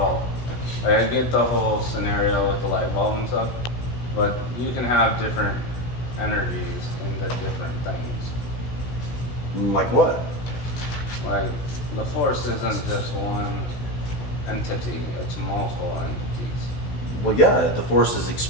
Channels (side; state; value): right; late; 17 ms